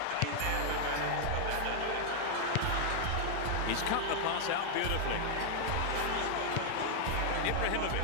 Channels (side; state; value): both; different; correlation 0.00